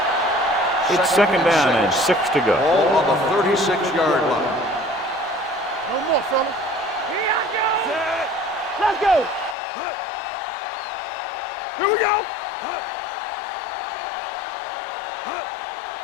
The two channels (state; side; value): drops out; right; at 9.6 s